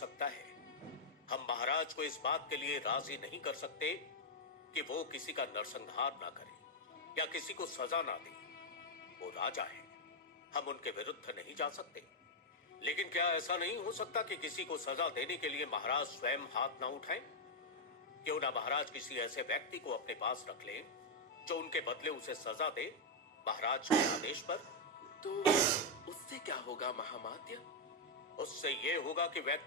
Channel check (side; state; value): both; normal; correlation -0.01